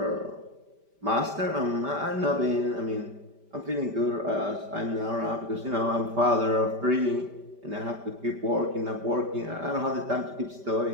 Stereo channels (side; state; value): left; late; 5.1 ms